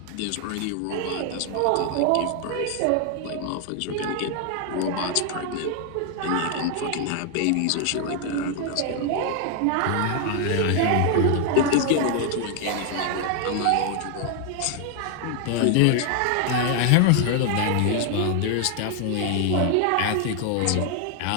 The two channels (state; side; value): different; both; correlation 0.00